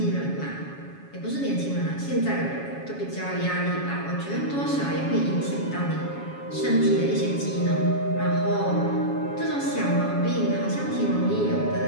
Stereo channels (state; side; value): late; right; 7.2 ms